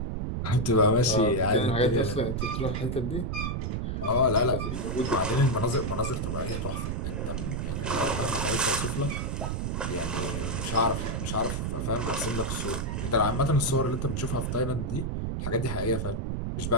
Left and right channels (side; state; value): right; noise; rumble, 2 dB below the sound